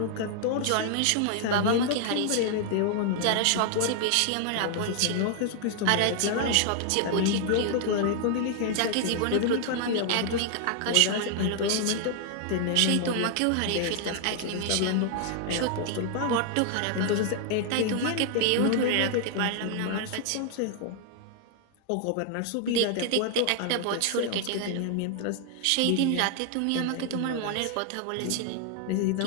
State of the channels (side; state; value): both; different; correlation 0.00